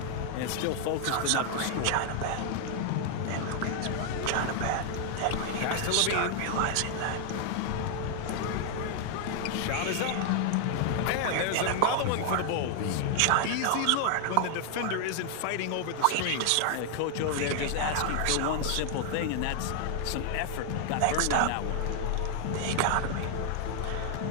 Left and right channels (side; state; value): both; different; correlation 0.00